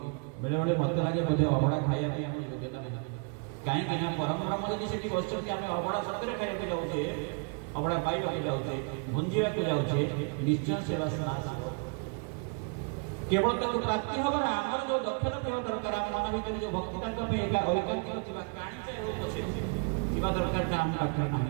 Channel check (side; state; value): left; quieter; 34.7 dB